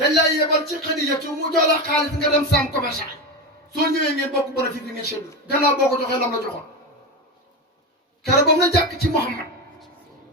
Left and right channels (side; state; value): both; normal; correlation 0.17